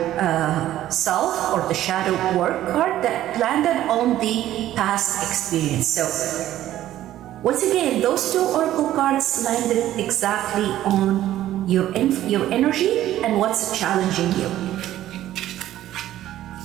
self, or the shadow work card that landed on the past experience. So once again, those two oracle cards landed exactly on your energy and what's challenging you.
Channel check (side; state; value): left; quieter; 13.2 dB